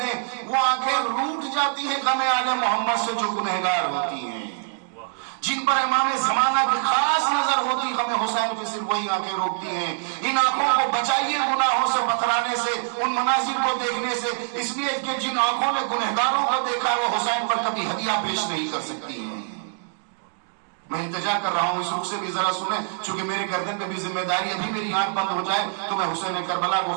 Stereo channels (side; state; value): left; silent; digital silence